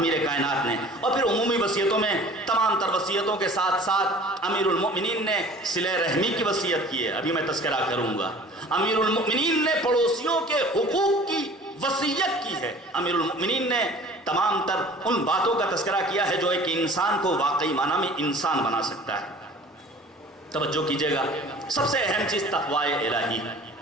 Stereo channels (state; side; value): normal; both; correlation 0.46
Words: کائنات نے. اور پھر عمومی وصیتوں میں تمام تر وصیتوں کے ساتھ ساتھ امیر المؤمنین نے صلہ رحمی کی وصیت کی ہے. ابھی میں تذکرہ کروں گا. امیر المؤمنین نے پڑوسیوں کے حقوق کی وصیت کی ہے. امیر المؤمنین نے تمام تر ان باتوں کا تذکرہ کیا ہے جو ایک انسان کو واقعی معنی میں انسان بنا سکتا ہے. توجہ کیجئے گا، سب سے اہم چیز تقوی الہی.